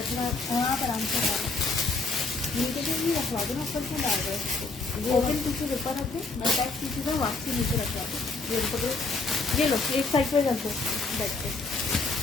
अपना हाँ, पर आराम से नीचे से भी रखवा दो ना, ऊपर से डाल दो। ओपन पीछे ऊपर रखे, अटैच पीछे से वापसी नीचे रखवा दो। ये पकड़ो, ये लो एक साइड पे रख दो, बैठ के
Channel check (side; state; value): right; quieter; 3.7 dB